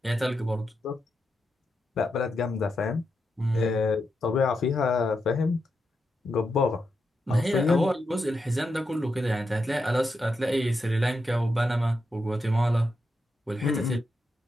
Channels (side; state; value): both; normal; correlation 0.86